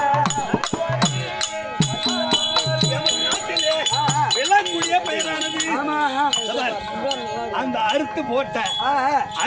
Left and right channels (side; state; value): both; identical; correlation 1.00